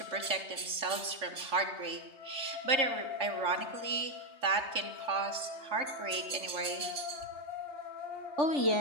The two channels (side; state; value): left; late; 3.7 ms